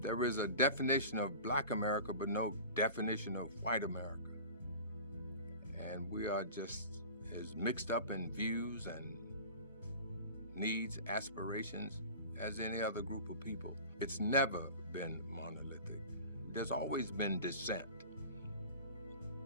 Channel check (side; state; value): both; inverted; correlation -0.37